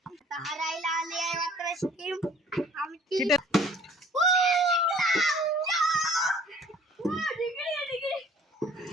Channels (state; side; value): normal; both; correlation 0.54